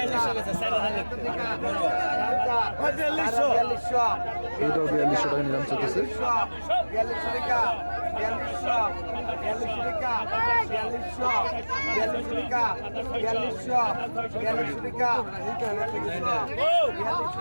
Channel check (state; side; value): inverted; both; correlation -1.00